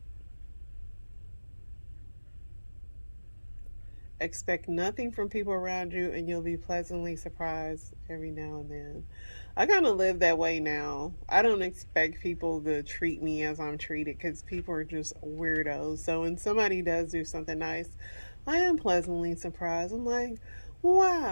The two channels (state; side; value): inverted; both; correlation -1.00